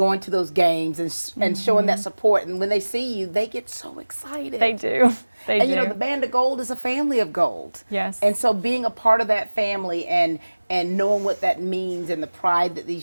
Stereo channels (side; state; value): both; inverted; correlation -1.00